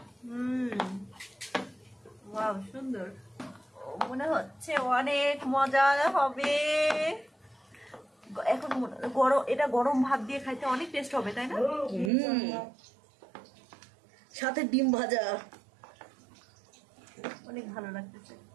ওয়াও সুন্দর, মনে হচ্ছে অনেক মজা হবে এখন। গরম, এটা গরম ভাত দিয়ে খাইতে অনেক টেস্ট হবে তাই না? সাথে ডিম ভাজা, অনেক ভালো লাগতেছে।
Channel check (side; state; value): left; drops out; at 12.1 s